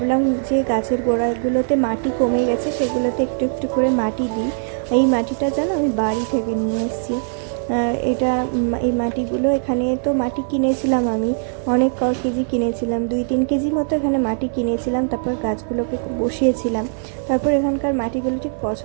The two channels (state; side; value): silent; left; 55 dB below the other